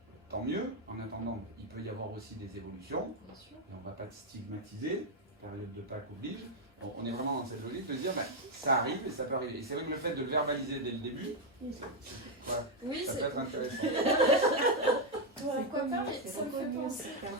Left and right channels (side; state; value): both; normal; correlation 0.02